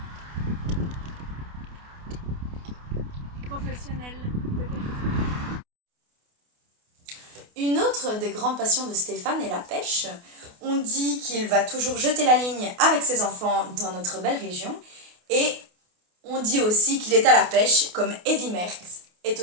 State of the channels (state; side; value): late; left; 28 ms